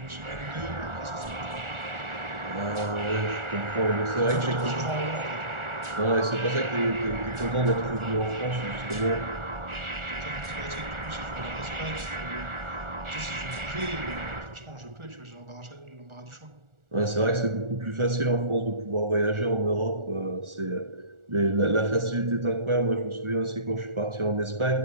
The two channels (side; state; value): left; late; 1.4 ms